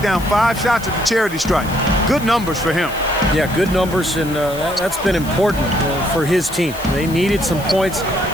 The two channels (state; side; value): noise; left; hiss, 16 dB below the sound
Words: down 5 shots at the charity stripe. Good numbers for him. Yeah, good numbers, and that's been important for his team. They needed some points.